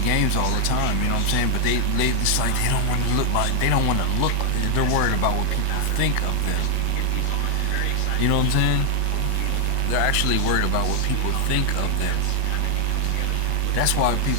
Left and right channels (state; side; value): different; both; correlation 0.00